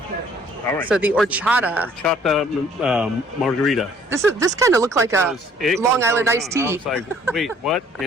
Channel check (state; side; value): normal; both; correlation 0.59